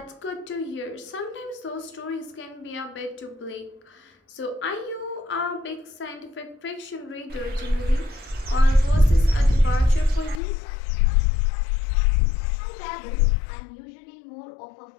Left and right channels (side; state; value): right; drops out; at 10.4 s